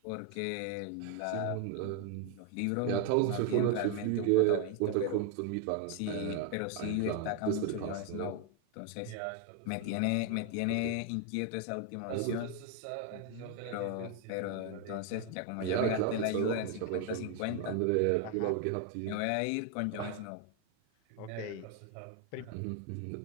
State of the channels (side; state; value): both; different; correlation 0.01